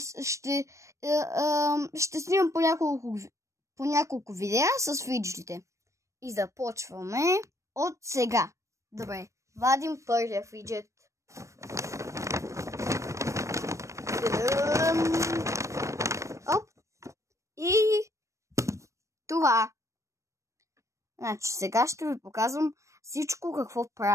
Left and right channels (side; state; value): left; late; 0.15 ms